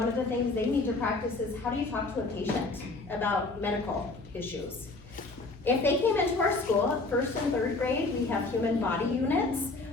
of the things they need to practice is how do you talk to a patient about medical issues. If they came into our school, 1st and 3rd grade, we have human body units,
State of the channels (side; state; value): right; quieter; 3.4 dB